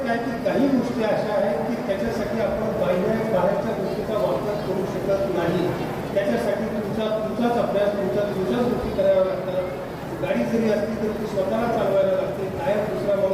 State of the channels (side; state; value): both; identical; correlation 1.00